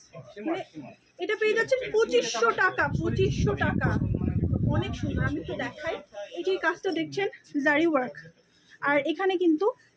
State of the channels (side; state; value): both; identical; correlation 1.00